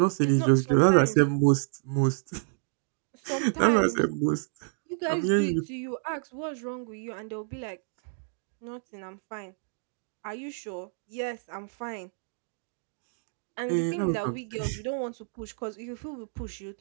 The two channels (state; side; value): silent; left; digital silence